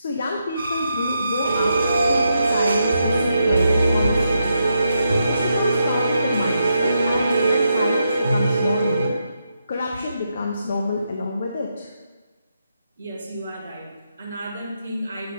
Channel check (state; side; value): inverted; both; correlation -0.82